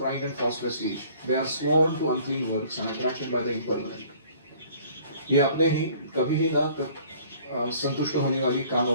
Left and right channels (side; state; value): both; inverted; correlation -0.54